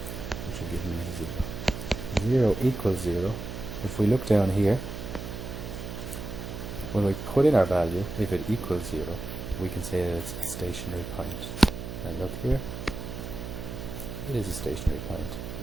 which will give me 0. 0 equals 0. If we look down here, when we put in our value, if it equals 0, we can say that it's a stationary point. And look here, it is a stationary point.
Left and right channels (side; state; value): right; noise; hum, 8 dB below the sound